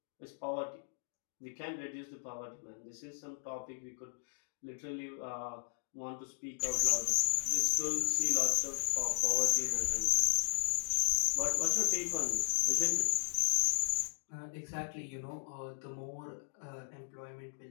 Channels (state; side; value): silent; right; digital silence